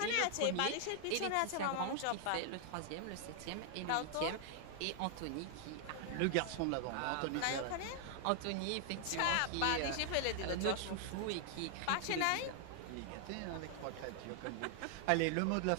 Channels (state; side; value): different; both; correlation 0.00